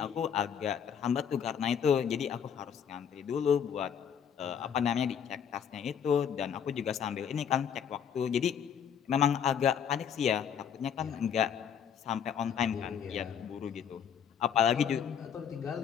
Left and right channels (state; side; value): quieter; right; 8.0 dB